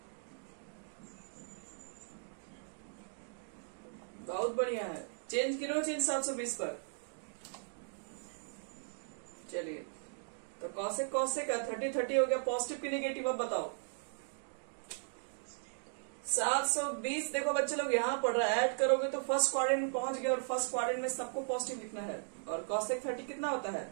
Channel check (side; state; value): left; silent; digital silence